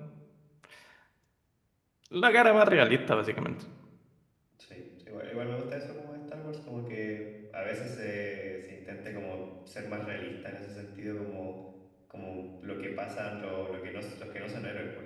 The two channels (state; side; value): identical; both; correlation 1.00